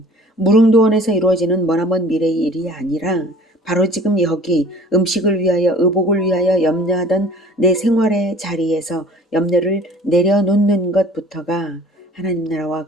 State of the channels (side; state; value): both; normal; correlation 0.47